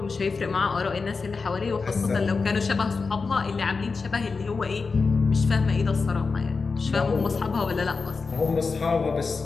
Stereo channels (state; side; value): quieter; right; 4.5 dB